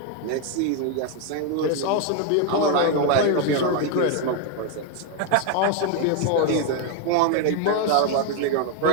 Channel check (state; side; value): different; both; correlation 0.01